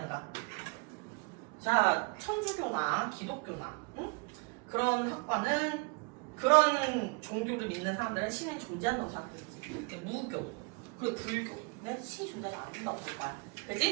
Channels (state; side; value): quieter; left; 31.5 dB